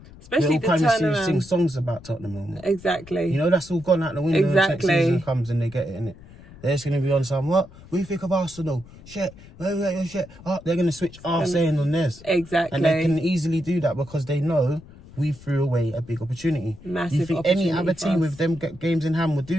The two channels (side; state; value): left; noise; rumble, 20 dB below the sound